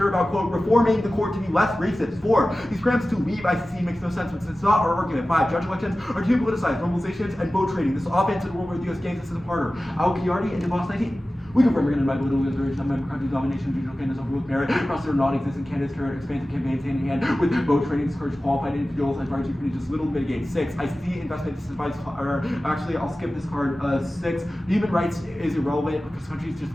about, quote, reforming the court to be less racist. 4. These grants to leave ICC makes no sense, but it's not our argument. 5. Judge elections are too politicized, normalizations, and vote trading. This is offense in a world where the U.S. gains this system harder. Al-Qiyardi and DeVos 19. We confirm we're going to invite little liberation of member countries' domination of regional candidates over with merit, across their non-existent candidates, carry expansive campaigns hand in hand with vote trading, discourage qualified individuals, and parties who just little mitigate. 6. ICC investment disadvantage, or actually, I'll skip this card. 6. Human rights is irrelevant because countries just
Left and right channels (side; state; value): both; normal; correlation 0.96